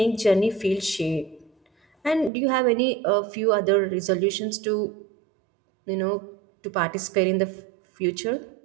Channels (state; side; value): drops out; left; at 2.3 s